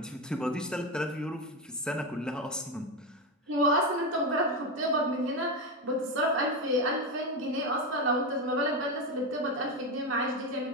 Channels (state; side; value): normal; both; correlation 0.14